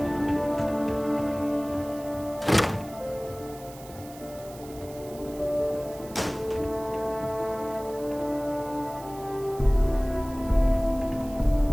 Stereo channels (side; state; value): right; noise; hiss, 19 dB below the sound